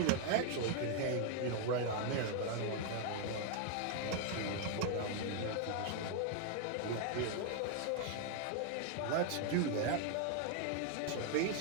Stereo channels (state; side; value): different; both; correlation 0.01